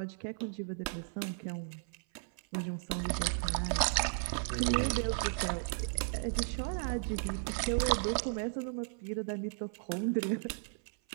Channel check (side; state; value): left; silent; 54 dB below the other